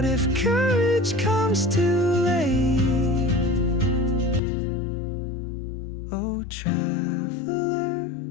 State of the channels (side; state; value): right; drops out; at 4.4 s